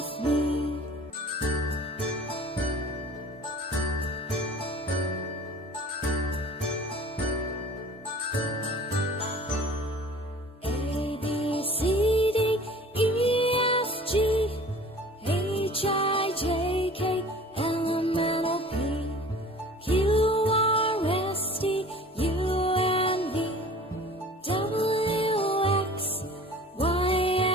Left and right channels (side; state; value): both; normal; correlation 0.45